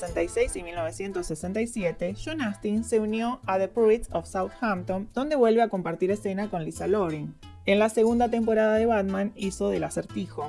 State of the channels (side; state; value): both; identical; correlation 1.00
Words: y 1967, John Astin se unió a The Pruitts of Southampton, donde vuelve a compartir escena con Lisa Loring. En la segunda temporada de Batman hizo del